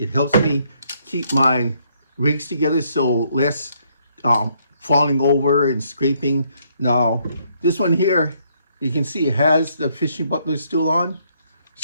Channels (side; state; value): both; inverted; correlation -0.71